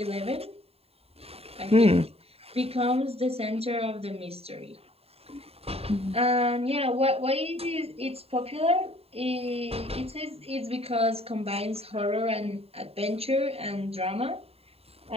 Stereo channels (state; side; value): late; left; 0.29 ms